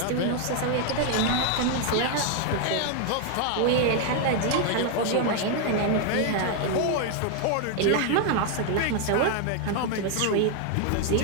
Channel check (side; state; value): both; different; correlation 0.01